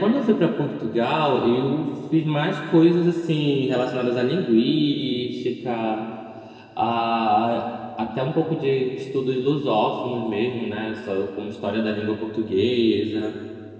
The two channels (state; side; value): identical; both; correlation 1.00